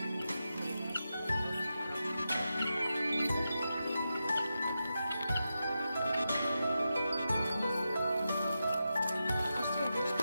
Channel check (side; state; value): both; inverted; correlation -0.89